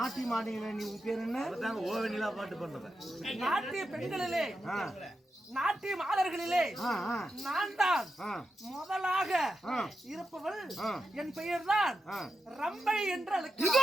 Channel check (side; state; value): both; normal; correlation 0.88